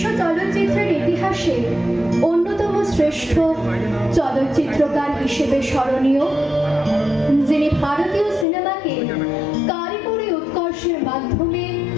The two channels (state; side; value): drops out; right; at 8.5 s